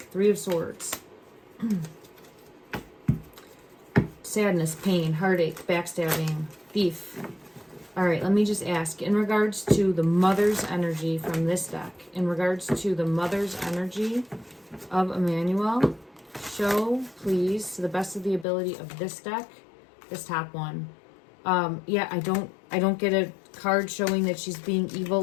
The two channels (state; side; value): drops out; right; at 18.4 s